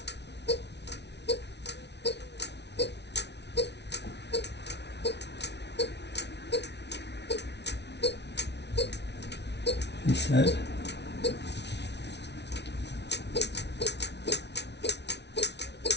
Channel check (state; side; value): late; right; 0.50 ms